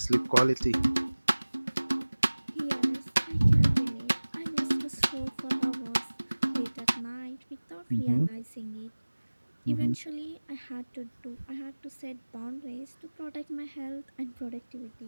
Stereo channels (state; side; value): inverted; both; correlation -1.00